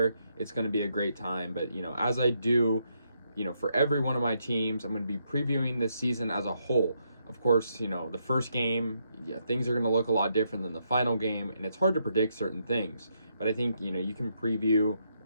It's going to be a great time, but, as I do, for every one of my teams, I'm going to be previewing this season as a whole. Of course, the first game, things are going to look a lot different than the final game, and it's hard to predict certain things. But I think, you can preview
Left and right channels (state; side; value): inverted; both; correlation -0.78